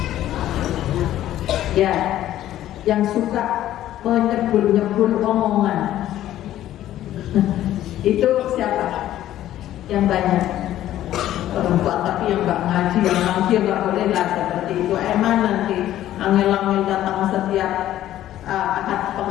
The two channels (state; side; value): quieter; right; 13.0 dB